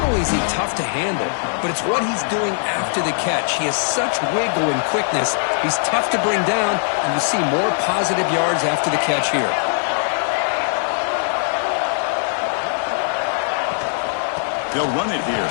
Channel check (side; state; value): right; silent; digital silence